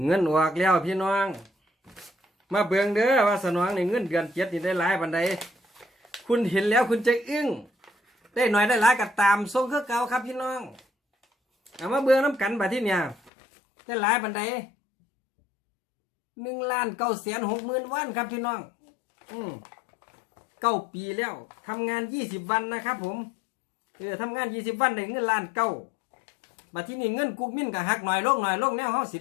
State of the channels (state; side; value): drops out; right; at 13.3 s